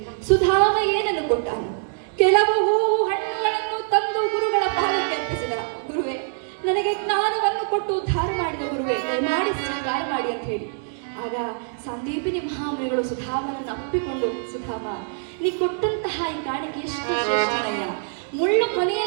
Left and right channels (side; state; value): left; silent; digital silence